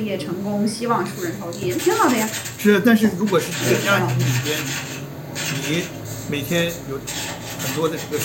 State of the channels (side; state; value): both; identical; correlation 1.00